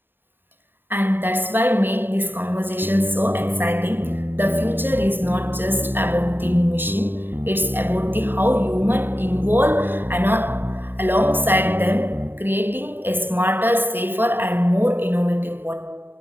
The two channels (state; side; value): late; left; 0.096 ms